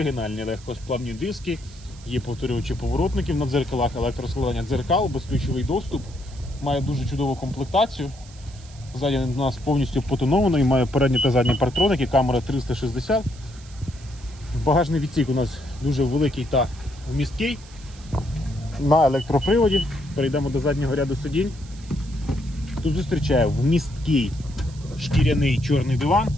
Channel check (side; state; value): right; noise; hiss, 22 dB below the sound